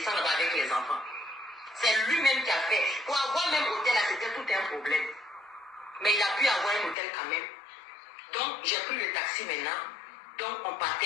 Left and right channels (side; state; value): right; drops out; at 7.0 s